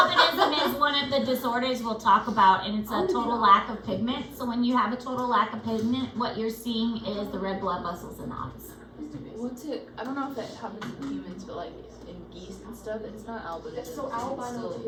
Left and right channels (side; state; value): both; identical; correlation 1.00